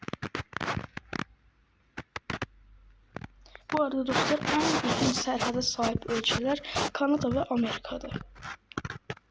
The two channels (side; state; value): both; identical; correlation 1.00